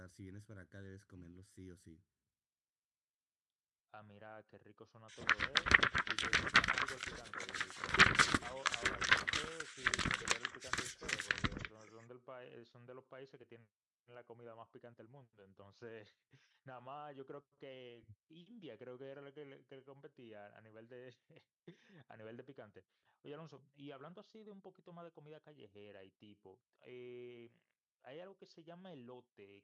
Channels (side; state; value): both; identical; correlation 1.00